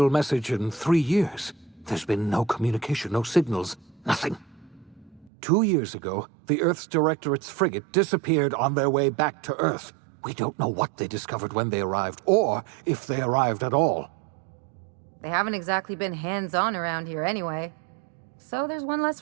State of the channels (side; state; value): left; drops out; at 5.3 s